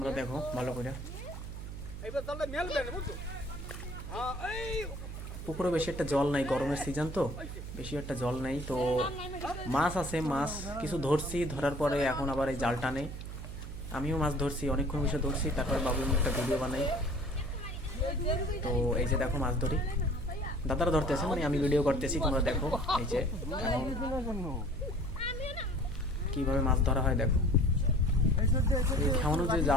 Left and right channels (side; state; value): right; noise; hum, 9 dB below the sound